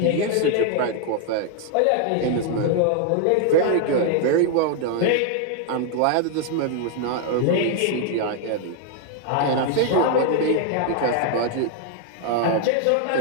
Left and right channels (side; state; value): both; different; correlation 0.00